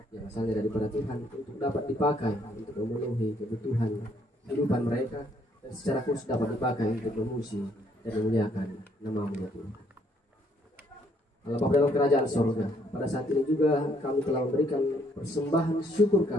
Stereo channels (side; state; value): both; normal; correlation 0.68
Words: yang asalnya daripada Tuhan untuk dapat dipakai untuk memenuhi kebutuhan kehidupan mereka, dan secara khusus dapat dipakai untuk memuji dan memuliakan nama-Mu ya Tuhan. Allah Bapa dalam kerajaan sorga, pada saat ini juga kami telah memberikan persembahan syukur